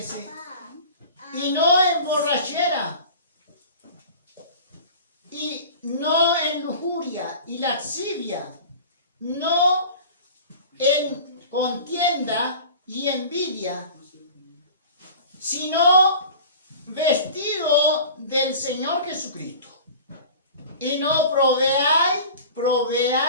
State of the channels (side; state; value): both; inverted; correlation -0.39